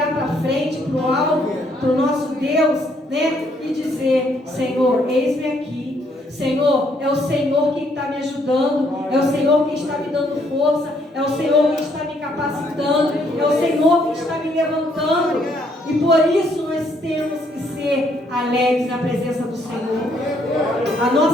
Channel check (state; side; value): normal; both; correlation 0.69